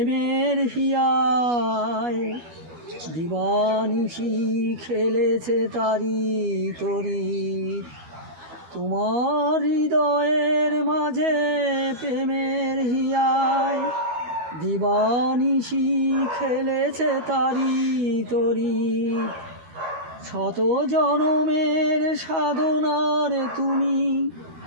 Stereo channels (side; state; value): left; late; 12 ms